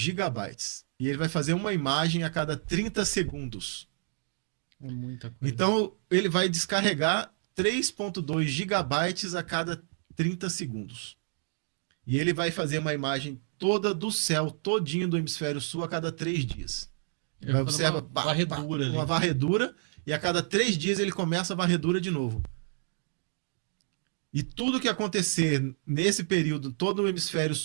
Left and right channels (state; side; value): silent; left; digital silence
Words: E ele vai fazer uma imagem a cada 30 segundos. É muita coisa. Então, ele vai descarregar 3,2 gigabytes a cada 30 segundos. E ele vai fazer uma imagem toda do céu, todinho do hemisfério sul, a cada 3 dias. Vai observar uma varredura, e a cada 3 dias ele começa a varredura de novo. E tudo que acontecer nesse período, todo o hemisfério